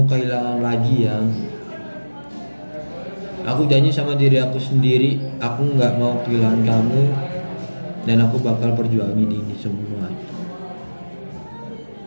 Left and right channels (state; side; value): inverted; both; correlation -1.00